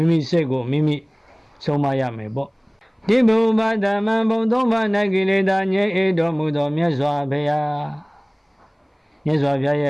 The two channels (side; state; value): both; identical; correlation 1.00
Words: ိမိစိတ်ကိုမိမိဆုံးမရမယ်ပေါ့ဒီဘုဗ္ဗဓမ္မဘုံသုံးပါး၌ကိလေသာငြိမ်းတော်မူသောမြတ်စွာဘုရားရဲ